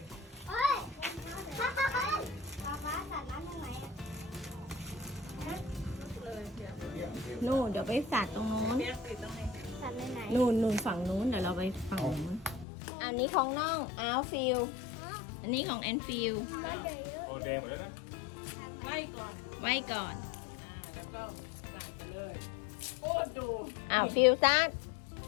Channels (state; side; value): drops out; right; at 12.7 s